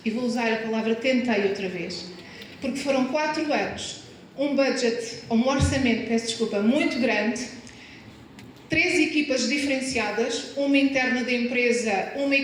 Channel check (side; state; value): both; identical; correlation 1.00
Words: e vou usar a palavra tentei outra vez, porque foram 4 anos, um budget, um orçamento, peço desculpa, muito grande, 3 equipas diferenciadas, uma interna da empresa, uma